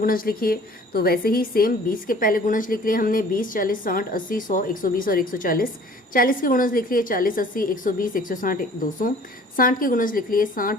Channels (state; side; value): normal; both; correlation 0.51